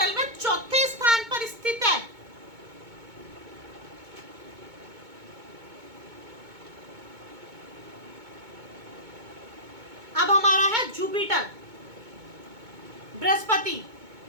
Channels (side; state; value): left; late; 2.2 ms